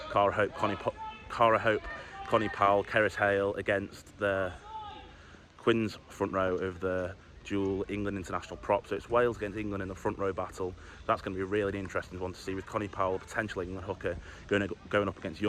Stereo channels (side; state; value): both; identical; correlation 1.00